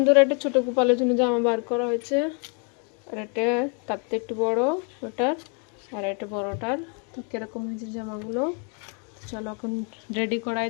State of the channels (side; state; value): right; quieter; 38.6 dB